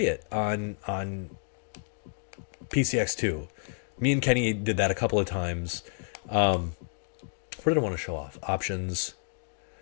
it on PCX2. Me and Kenny did that a couple of times. What did I want to show off? Options.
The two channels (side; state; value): right; silent; digital silence